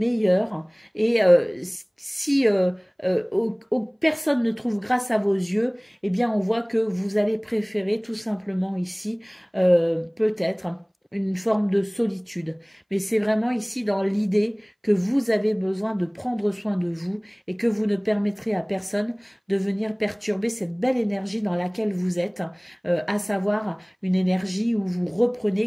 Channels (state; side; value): identical; both; correlation 1.00